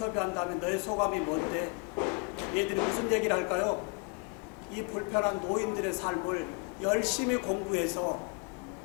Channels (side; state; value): right; quieter; 31.7 dB